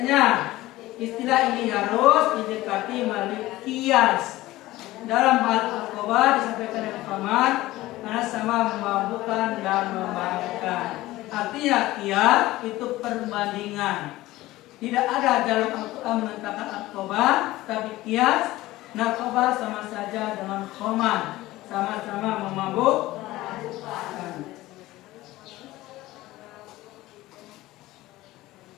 Istilah ini harus didekati melalui kias. Dalam hal narkoba disampaikan dengan paman karena sama memabukkan dan memabukkan. Artinya kias itu perbandingan. Tidak ada dalam Al-Quran menentangkan narkoba, tapi kias narkoba sama saja dengan khamar, sama-sama memabukkan.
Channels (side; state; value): right; quieter; 17.4 dB